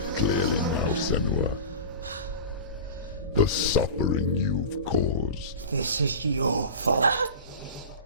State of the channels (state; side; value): inverted; both; correlation -0.31